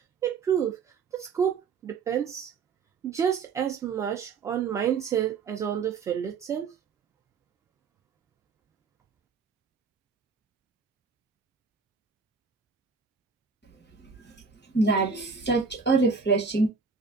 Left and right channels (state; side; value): quieter; left; 5.2 dB